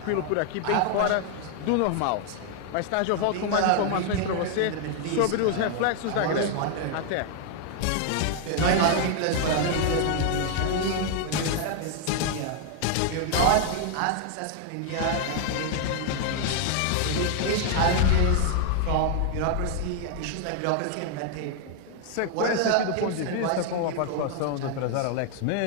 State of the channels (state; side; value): different; both; correlation 0.00